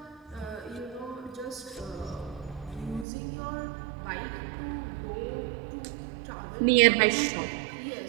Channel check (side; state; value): left; drops out; at 3.1 s